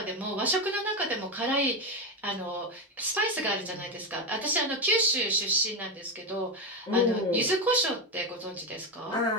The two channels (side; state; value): both; normal; correlation 0.12